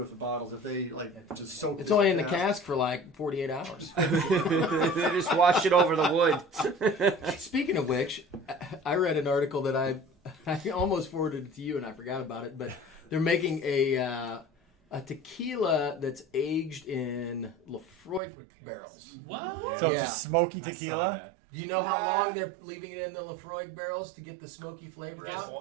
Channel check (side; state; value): left; drops out; at 18.2 s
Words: the bottles. If they like just soak. It's only in the cask for like 48 hours. They just wash it over the wood. Speaking of which, I read an article that I almost forwarded it to you and I forgot about it, but they're making a tequila that's aged in Lefroy barrels. What? So Yeah. it's a smoky I saw tequila. that. Do you know how long they're leaving it in the Lefroy barrels to get the smoky flavor Just